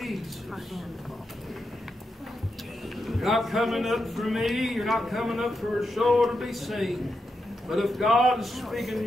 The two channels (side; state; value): both; normal; correlation 0.86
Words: You're not coming up for me. You're not coming up for a show to be seen. But if God is speaking to